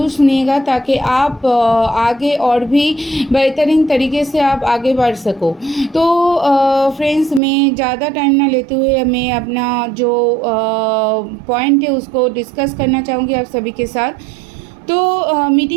सुनिएगा ताकि आप आगे और भी बेहतरीन तरीके से आप आगे बढ़ सको। तो फ्रेंड्स, मैं ज़्यादा टाइम ना लेते हुए मैं अपना जो पॉइंट है उसको डिस्कस करना चाहूँगी आप सभी के साथ। तो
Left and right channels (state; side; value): drops out; left; at 7.4 s